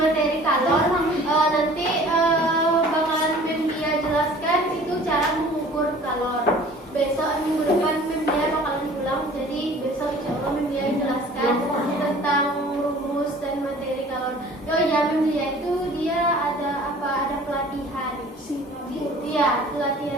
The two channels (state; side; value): normal; both; correlation 0.48